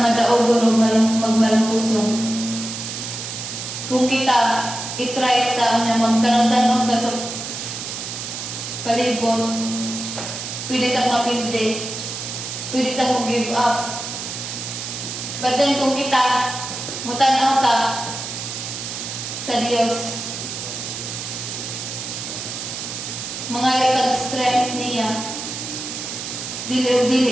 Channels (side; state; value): right; noise; hiss, 6 dB below the sound